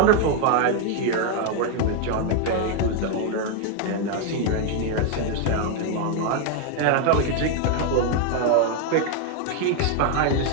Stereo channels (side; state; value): both; different; correlation 0.01